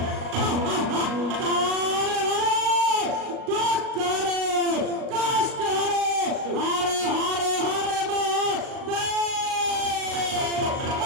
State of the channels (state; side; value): late; left; 37 ms